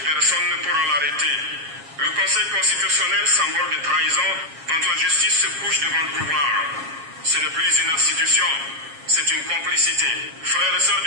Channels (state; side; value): late; left; 7.3 ms